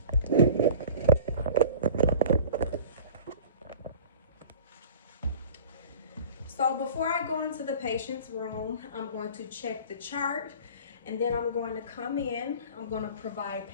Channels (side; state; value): both; inverted; correlation -0.42